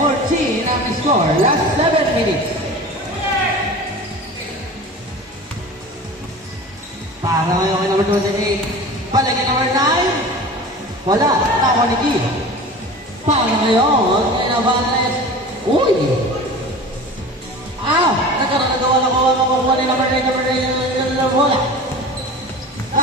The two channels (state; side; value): normal; both; correlation 0.36